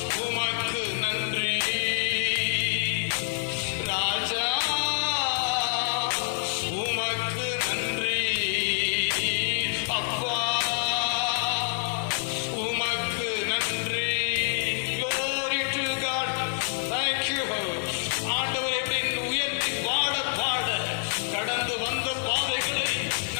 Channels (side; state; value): right; silent; 60 dB below the other